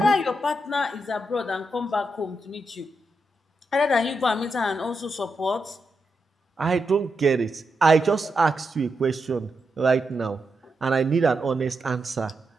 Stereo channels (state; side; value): normal; both; correlation 0.85